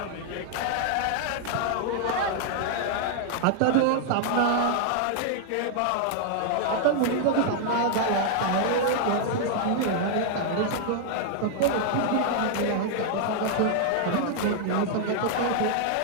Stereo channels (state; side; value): different; both; correlation 0.00